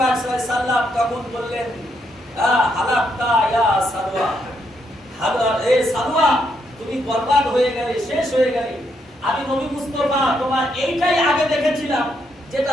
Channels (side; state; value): both; normal; correlation 0.77